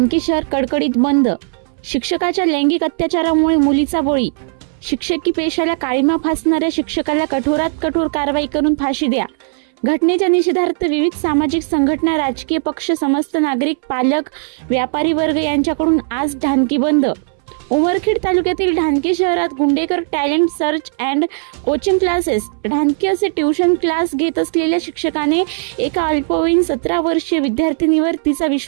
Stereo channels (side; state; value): left; silent; 64 dB below the other